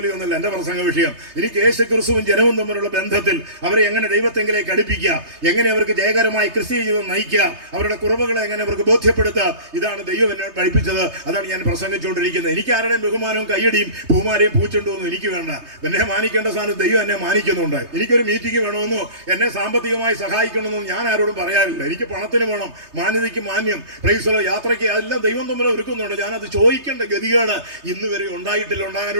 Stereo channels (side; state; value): left; late; 3.3 ms